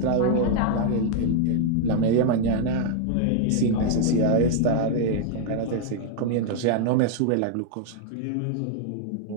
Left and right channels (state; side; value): different; both; correlation -0.01